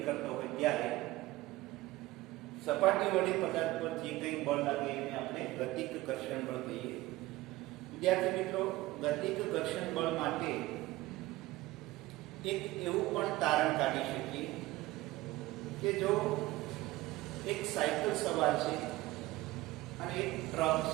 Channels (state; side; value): quieter; left; 18.3 dB